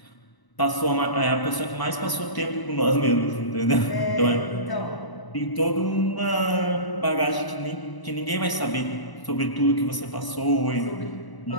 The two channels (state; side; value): late; right; 1.0 ms